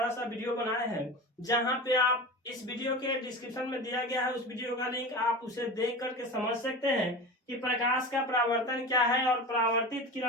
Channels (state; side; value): normal; both; correlation 0.30